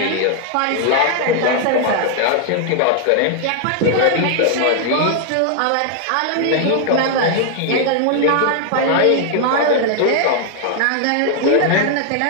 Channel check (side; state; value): both; different; correlation 0.00